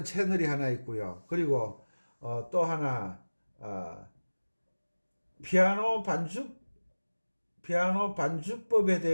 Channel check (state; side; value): inverted; both; correlation -1.00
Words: 채널이 하나 있고요. 그리고 또 하나 피아노 반주법에